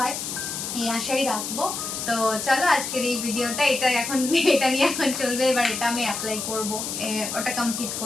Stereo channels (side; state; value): left; noise; hiss, 5 dB below the sound